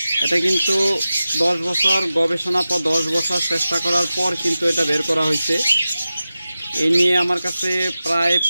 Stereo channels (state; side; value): inverted; both; correlation -0.94